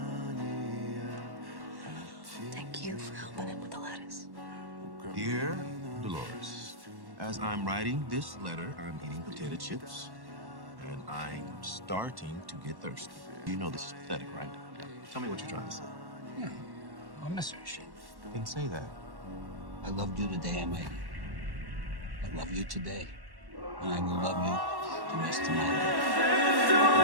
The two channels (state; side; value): late; left; 1.1 ms